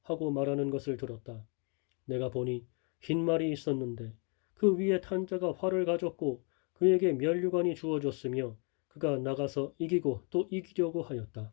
하고 말하는 것을 들었다. 내가 보니 흰 말이 있었는데 그 위에 탄 자가 활을 가졌고 그에게 면류관이 주어졌으며 그가 나가서 이기고 또 이기려고 하였다.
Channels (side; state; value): right; quieter; 36.5 dB